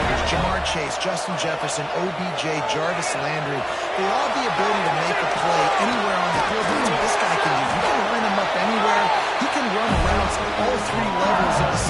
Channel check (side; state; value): both; identical; correlation 1.00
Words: Jamar Chase, Justin Jefferson, OBJ, Jarvis Landry. They all have the ability to make a play anywhere on the field. That's what this guy can do. You can line him up anywhere. He can run routes at all 3 levels of